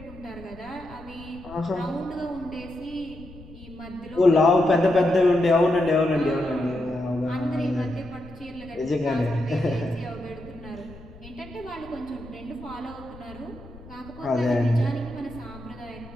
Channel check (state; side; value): noise; left; rumble, 18 dB below the sound